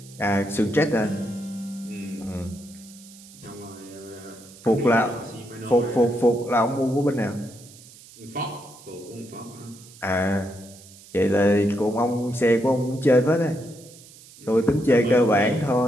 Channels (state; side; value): noise; right; hiss, 21 dB below the sound